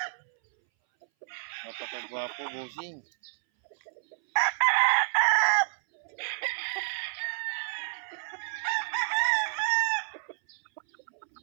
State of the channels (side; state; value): left; silent; 58 dB below the other